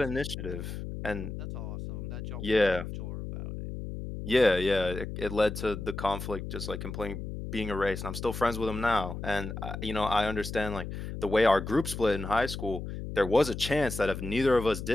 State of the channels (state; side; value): noise; left; hum, 7 dB below the sound